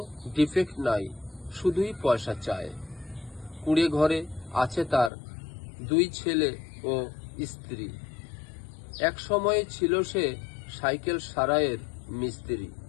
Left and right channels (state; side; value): drops out; right; at 5.1 s